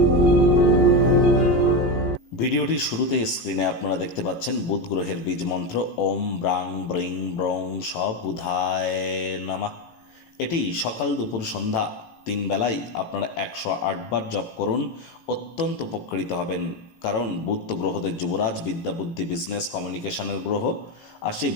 ভিডিওটির শুরুতেই স্ক্রিনে আপনারা দেখতে পাচ্ছেন বুধ গ্রহের বীজ মন্ত্র ওম ব্রাং ব্রিং ব্রং স বুধায় নমঃ। এটি সকাল দুপুর সন্ধ্যা 3 বেলায় আপনারা 108 বার জপ করুন, অত্যন্ত উপকৃত হবেন। কারণ বুধ তো গ্রহদের যুবরাজ, বিদ্যা বুদ্ধি বিজনেস কমিউনিকেশনের গ্রহ। আর সেই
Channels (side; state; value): right; late; 18 ms